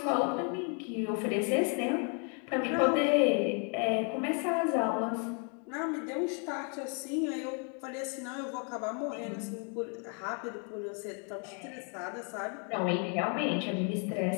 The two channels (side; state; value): right; quieter; 39.7 dB